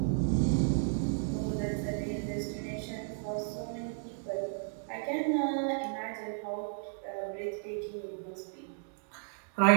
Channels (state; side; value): silent; left; digital silence